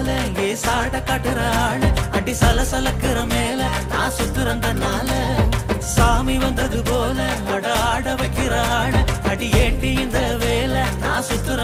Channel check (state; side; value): identical; both; correlation 1.00